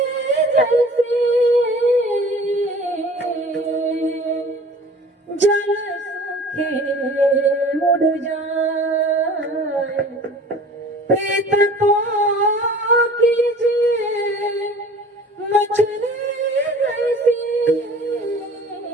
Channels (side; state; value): both; normal; correlation 0.45